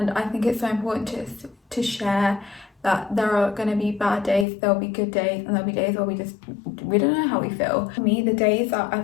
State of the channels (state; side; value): drops out; right; at 4.5 s